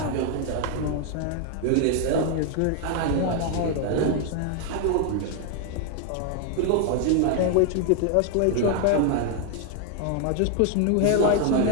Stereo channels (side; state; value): both; different; correlation 0.00